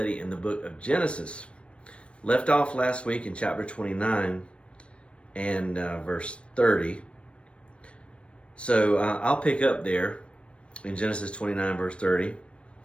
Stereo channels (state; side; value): late; right; 0.060 ms